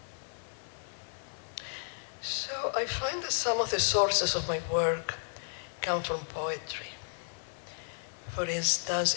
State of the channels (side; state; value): right; silent; 56 dB below the other